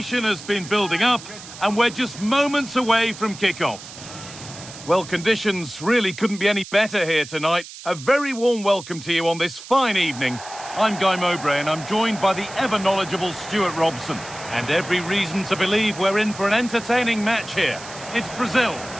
has been building up, and we're just moments away from kickoff. Well, conditions really couldn't be any better here tonight. A very warm welcome to you on this fine evening. I'm Guy Mowbray, and I'm joined by the ever-knowledgeable Stuart Robson. And every reason to believe we're in for an entertaining match here. It's Brazil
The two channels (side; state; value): right; noise; hiss, 15 dB below the sound